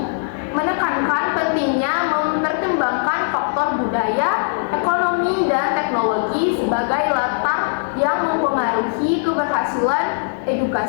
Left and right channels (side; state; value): right; silent; digital silence